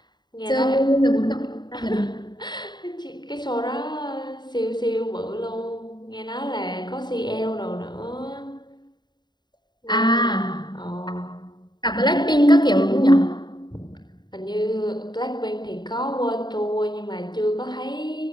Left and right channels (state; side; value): late; right; 0.21 ms